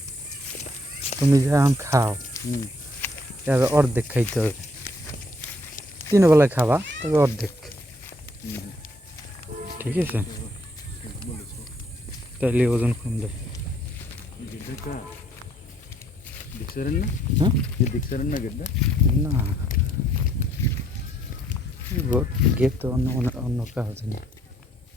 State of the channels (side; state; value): both; normal; correlation 0.67